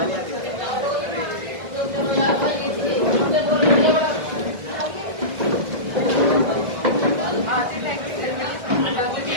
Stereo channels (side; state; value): left; late; 1.6 ms